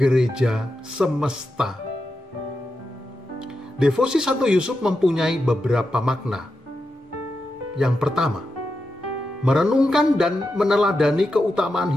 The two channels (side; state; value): both; normal; correlation 0.88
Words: semesta. Devosi Santo Yusuf mempunyai beberapa makna. Yang pertama, merenungkan dan meneladani keutamaan